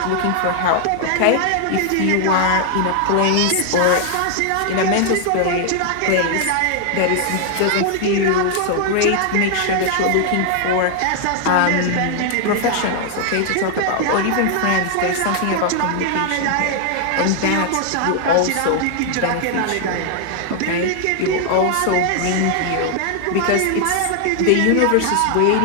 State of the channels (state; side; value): different; both; correlation 0.00